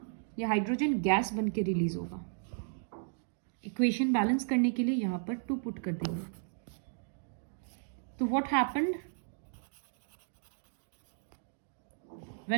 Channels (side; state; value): left; silent; digital silence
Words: ये हाइड्रोजन गैस बन के रिलीज होगा. इक्वेशन बैलेंस करने के लिए यहाँ पर 2 पुट कर देंगे. तो what happened